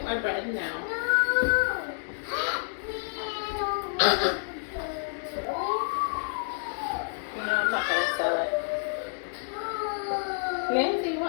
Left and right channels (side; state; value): right; silent; digital silence